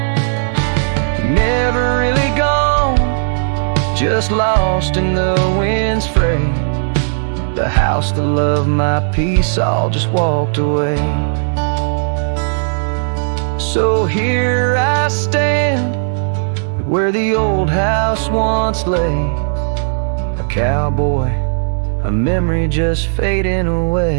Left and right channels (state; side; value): silent; left; digital silence